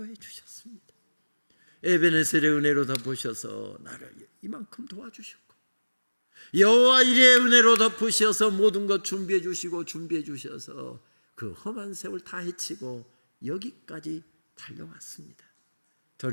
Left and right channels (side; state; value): both; inverted; correlation -1.00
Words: 주셨습니다. 에베네셀의 은혜로 덮으셔서 나를 이만큼 도와주셨고, 여호와 이레의 은혜로 덮으셔서 모든 것 준비해 주셔서 그 험한 세월 다 헤치고 여기까지 달려왔습니다.